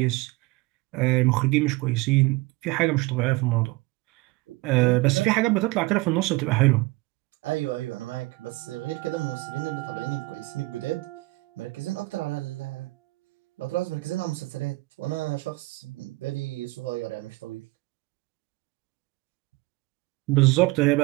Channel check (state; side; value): quieter; left; 22.1 dB